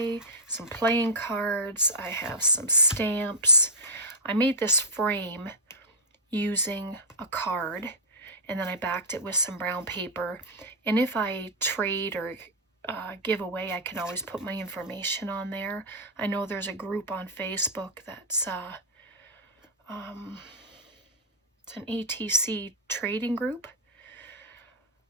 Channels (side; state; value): both; normal; correlation -0.07